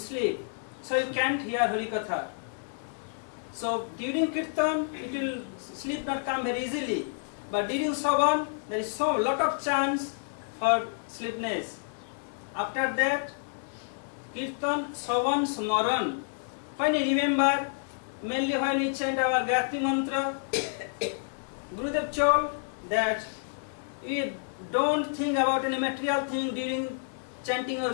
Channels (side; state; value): right; silent; digital silence